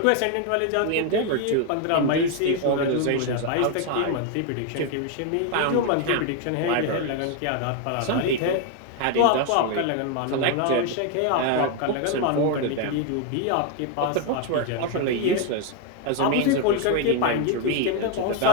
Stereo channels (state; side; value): different; both; correlation 0.01